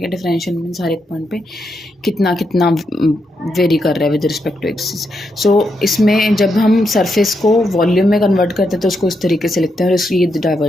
है, डिफरेंशियल मीन्स हर एक पॉइंट पे कितना कितना वेरी कर रहा है विद रिस्पेक्ट टू एक्सिस। सो इसमें जब हम सरफेस को वॉल्यूम में कन्वर्ट करते हैं तो उसको इस तरीके से लिखते हैं, और ये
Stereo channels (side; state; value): both; normal; correlation 0.82